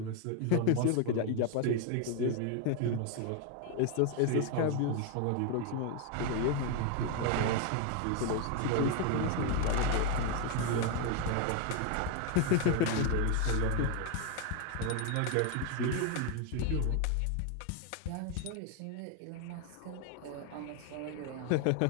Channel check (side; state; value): both; different; correlation 0.01